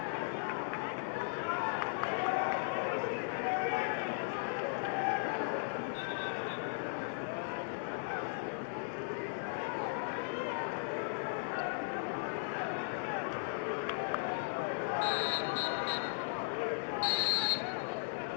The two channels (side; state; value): right; silent; digital silence